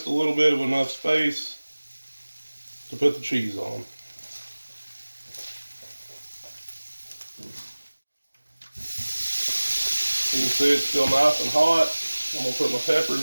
a little bit of enough space to put the cheese on. You can see it's still nice and hot. I'm going to put my peppers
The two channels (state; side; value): inverted; both; correlation -1.00